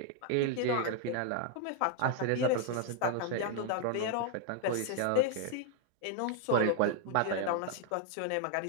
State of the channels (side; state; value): both; different; correlation 0.00